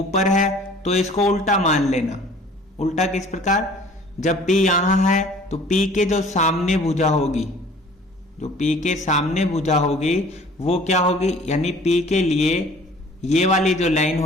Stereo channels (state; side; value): normal; both; correlation 0.50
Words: है तो इसको उल्टा मान लेना। उल्टा किस प्रकार, जब p यहां है तो p के जो सामने भुजा होगी, जो p के सामने भुजा होगी वो क्या होगी, यानी p के लिए ये वाली जो लाइन